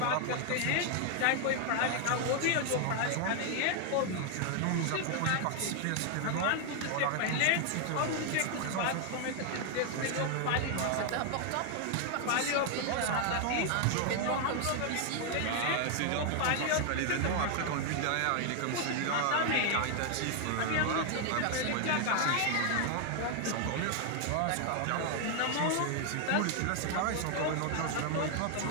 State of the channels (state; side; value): different; both; correlation 0.00